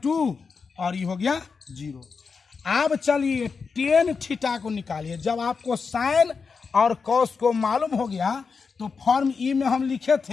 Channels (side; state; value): right; quieter; 5.2 dB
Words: और ये हो गया 0। अब चलिए टेन थीटा को निकालिए। जब आपको साइन और कॉस को मालूम हो गया तो फॉर्म ई में हम लिखे